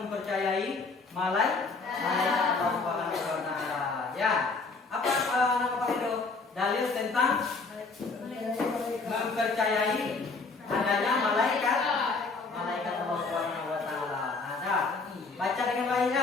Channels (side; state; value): right; quieter; 4.1 dB